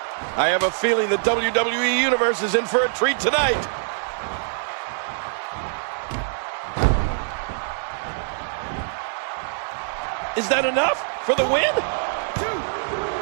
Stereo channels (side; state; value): left; silent; digital silence